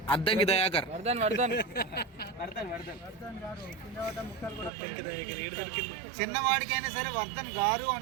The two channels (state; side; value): drops out; left; at 4.7 s